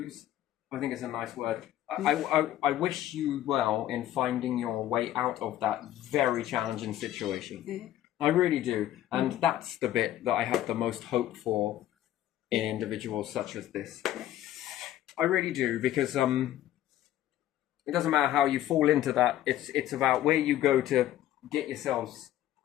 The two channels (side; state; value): right; quieter; 12.9 dB